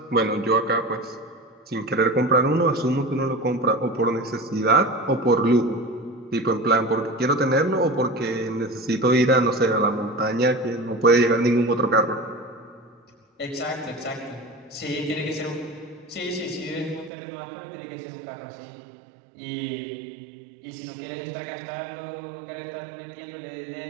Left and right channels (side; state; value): left; drops out; at 17.1 s